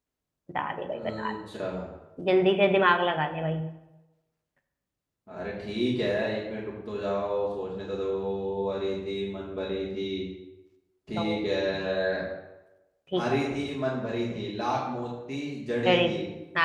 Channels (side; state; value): both; identical; correlation 1.00